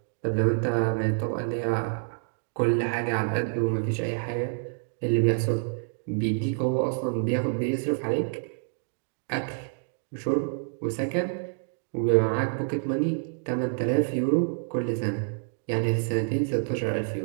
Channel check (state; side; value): silent; left; digital silence